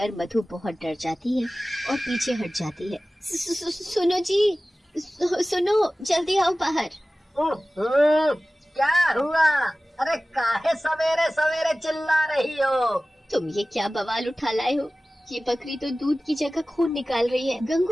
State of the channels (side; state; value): both; normal; correlation 0.97